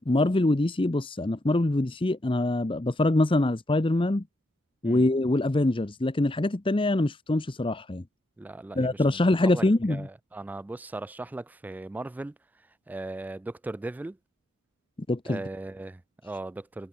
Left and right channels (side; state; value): both; normal; correlation 0.80